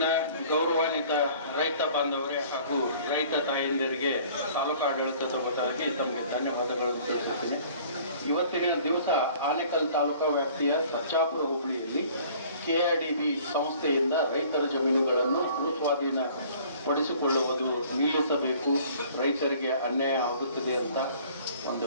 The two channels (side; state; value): both; inverted; correlation -0.52